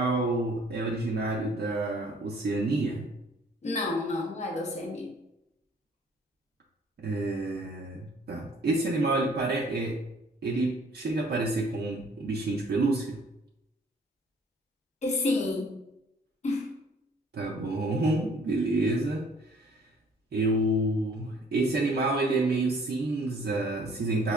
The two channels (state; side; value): normal; both; correlation 0.57